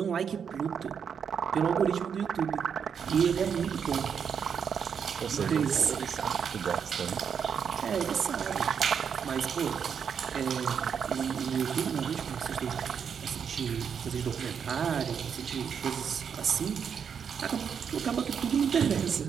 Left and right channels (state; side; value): quieter; left; 7.2 dB